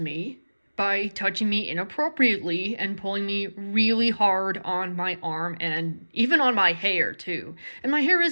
by touching me inappropriately and pulling me really hard on my arm and even on my hair, too. And my hair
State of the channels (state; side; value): inverted; both; correlation -1.00